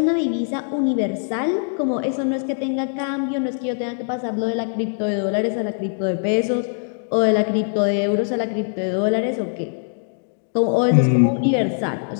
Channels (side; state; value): right; silent; digital silence